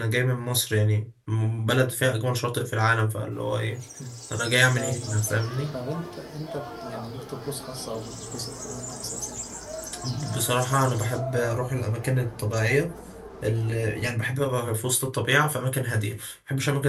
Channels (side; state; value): both; identical; correlation 1.00